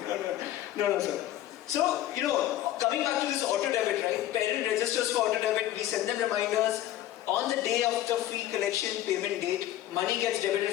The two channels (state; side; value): quieter; right; 13.4 dB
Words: No, sir. So, coming back to this auto debit, right? Parent registers for auto debit, we send them reminders. On the day of the fee collection payment date, money gets debited